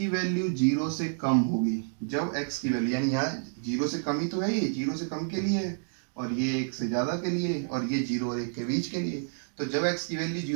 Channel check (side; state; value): left; silent; digital silence